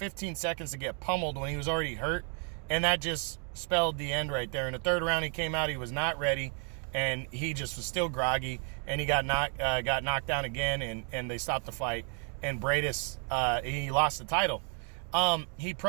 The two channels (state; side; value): quieter; left; 37.6 dB